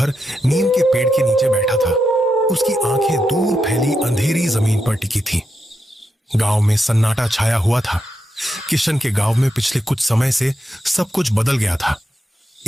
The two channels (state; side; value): normal; both; correlation 0.85